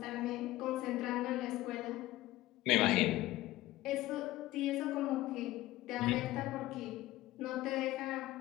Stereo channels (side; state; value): right; quieter; 16.8 dB